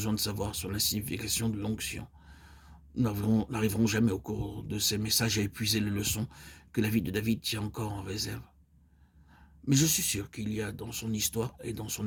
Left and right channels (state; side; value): identical; both; correlation 1.00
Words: de savoir sur la signification de l'onction. Nous n'arriverons jamais au cours de ces messages à épuiser les leçons que la vie de David tient encore en réserve. Mais je suis sûr qu'il y a dans son histoire et dans son